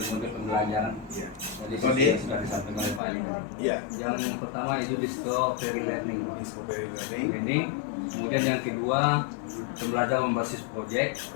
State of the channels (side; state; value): right; drops out; at 3.0 s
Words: pembelajaran. Ya. Jadi seperti yang sudah disampaikan oleh Pak Ali tadi. Ya. Yang pertama itu discovery learning. Discovery learning. Learning. Kemudian yang kedua pembelajaran berbasis proyek.